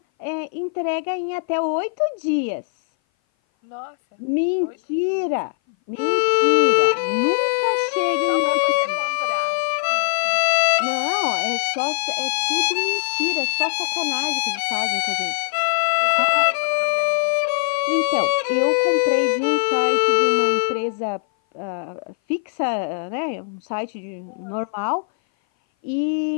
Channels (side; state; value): right; silent; 58 dB below the other